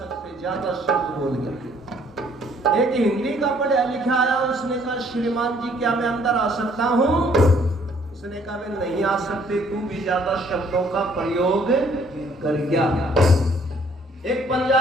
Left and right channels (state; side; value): normal; both; correlation 0.62